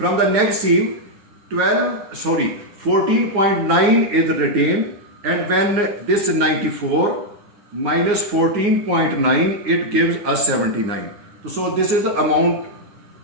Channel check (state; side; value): late; left; 9.6 ms